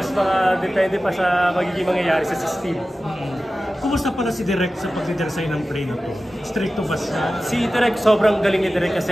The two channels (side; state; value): both; normal; correlation 0.95